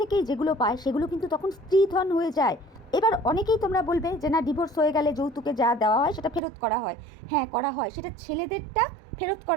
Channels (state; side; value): drops out; left; at 6.4 s